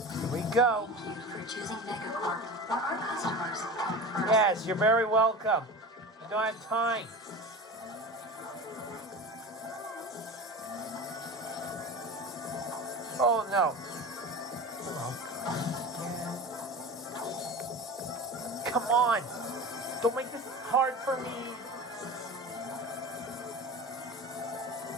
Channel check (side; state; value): both; normal; correlation 0.31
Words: Here we go. Thank you for choosing Megacorp for our customers. Yes, you're very welcome. I don't have time. Oh no. Come on. Don't make this hard for me.